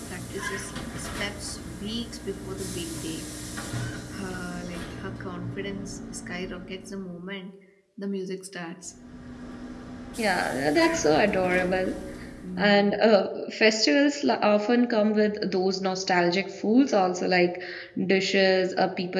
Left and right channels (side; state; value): both; identical; correlation 1.00